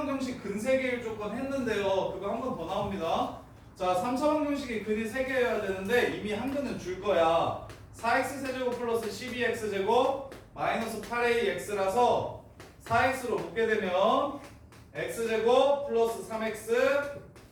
근 3개일 조건 했는데요. 그거 한 번 더 나옵니다. 자, 3차 방정식이 근이 3개여야 되는데 이미 한 근은 줄 거야. 4x 세제곱 플러스 12x제곱 마이너스 8ax라서 4x로 묶게 되면 x제곱 플러스 3x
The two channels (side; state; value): both; identical; correlation 1.00